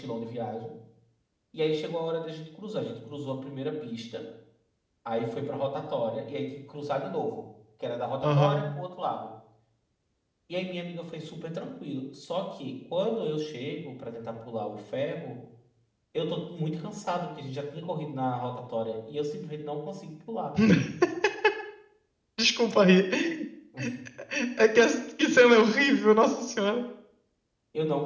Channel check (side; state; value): both; identical; correlation 1.00